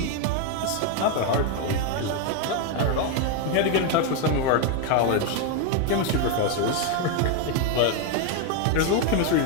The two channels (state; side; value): different; both; correlation 0.01